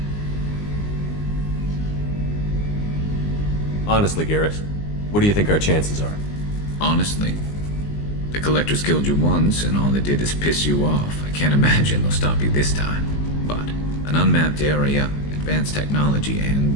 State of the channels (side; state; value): right; late; 19 ms